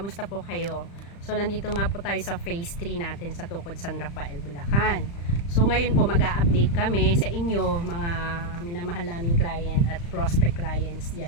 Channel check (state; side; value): late; right; 35 ms